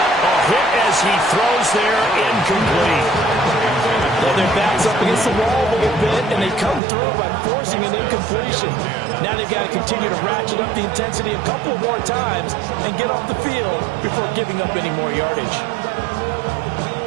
A hit as he throws there, incomplete. Well, their back's up against the wall a little bit, and they come through by forcing an incompletion. Now they've got to continue to ratchet up the intensity a couple more times and get off the field before giving up any more yardage.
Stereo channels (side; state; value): left; drops out; at 6.8 s